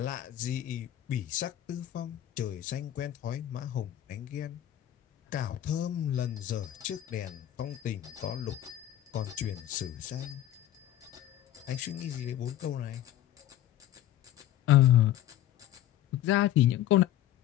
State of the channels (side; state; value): right; quieter; 12.6 dB